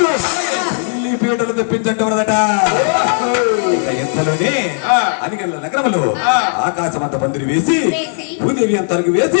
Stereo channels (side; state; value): right; silent; digital silence